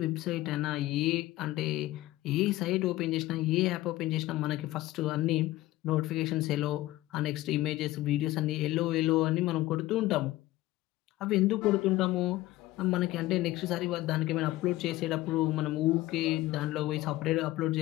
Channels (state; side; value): quieter; right; 17.1 dB